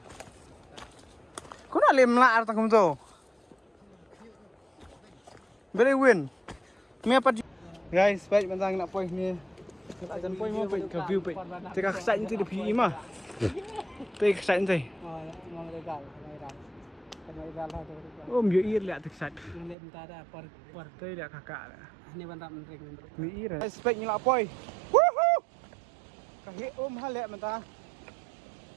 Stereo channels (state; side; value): drops out; left; at 19.8 s